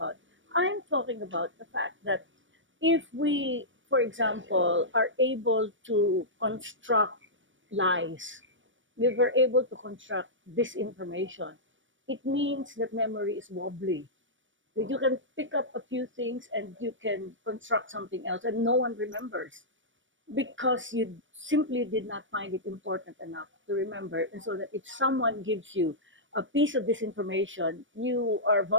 I'm talking about the fact that if we, for example, are able to construct lies, we were able to construct disinformation, it means that memory is wobbly. You can pick up a few things and you can construct something else, and no one remembers because you simply did not find it important enough to remember. And so that if someone gives you a piece of this information, you are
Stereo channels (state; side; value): late; left; 0.56 ms